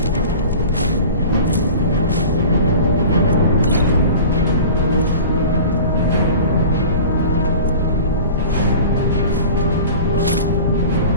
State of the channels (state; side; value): inverted; both; correlation -0.39